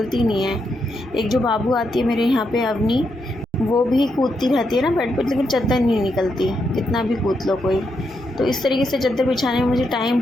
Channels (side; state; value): both; normal; correlation 0.81